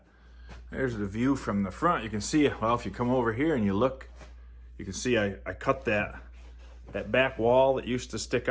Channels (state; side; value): identical; both; correlation 1.00